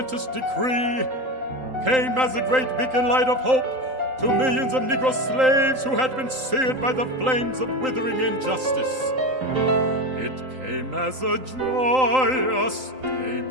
decree came as a great beacon light of hope to millions of Negro slaves who had been seared by the flames of withering injustice. It came as a joyous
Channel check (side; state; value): left; late; 3.8 ms